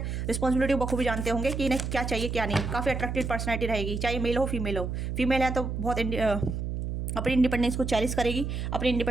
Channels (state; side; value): noise; right; hum, 3 dB below the sound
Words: रिस्पॉन्सिबिलिटी बखूबी जानते होंगे कि इन्हें क्या चाहिए क्या नहीं। काफ़ी अट्रैक्टिव पर्सनैलिटी रहेगी, चाहे मेल हो फीमेल हो। फीमेल है तो बहुत अपनी इंडिपेंडेंस को चैलेंज करेगी, अपनी